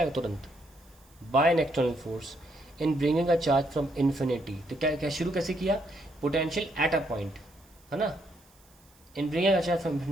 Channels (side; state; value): right; noise; hiss, 29 dB below the sound